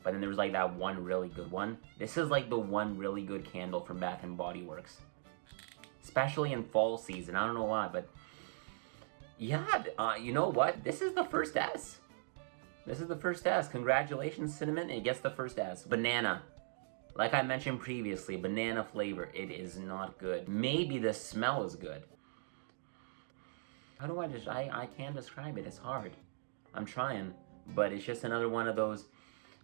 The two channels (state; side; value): silent; left; digital silence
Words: But then there's like that one really good one. This is like the one really good candle from Bath & Body Works. Especially in fall season. I don't know why, but yeah, you know what? This is the first S. This is the first S. Congratulations, Cinnamon. It gets the first S. Banana. Like I mentioned previously, banana flavor. It is not good. Maybe the smell is good. How do I can't describe it. It's hard. I'm trying. But it's just another one of those,